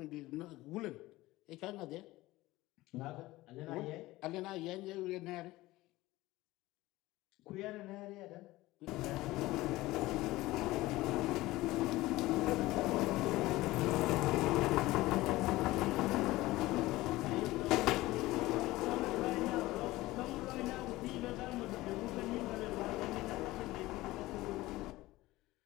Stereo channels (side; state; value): right; quieter; 18.4 dB